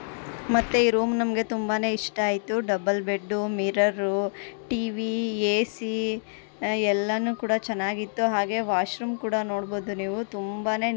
ಮತ್ತು ಈ ರೂಮ್ ನಮಗೆ ತುಂಬಾ ಇಷ್ಟ ಆಯಿತು. Double bed, mirror, TV, AC ಎಲ್ಲನೂ ಕೂಡ ಚೆನ್ನಾಗಿತ್ತು. ಹಾಗೆ ವಾಶ್ರೂಮ್ ಕೂಡ ನೋಡ್ಬೋದು ನೀವು, ತುಂಬಾ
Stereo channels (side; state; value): right; silent; 61 dB below the other